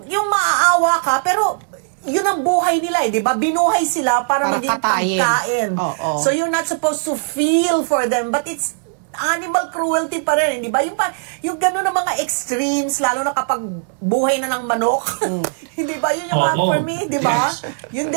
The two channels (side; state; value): left; silent; digital silence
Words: maaawa ka pero yun ang buhay nila di ba? Binuhay sila para maging pagkain. So you're not supposed to feel for them but it's animal cruelty pa rin, di ba? Yung gano'n ng mga extremes, lalo na kapag buhay na ng manok. Hindi ba? Yun yung for me, di ba? Yes. Yun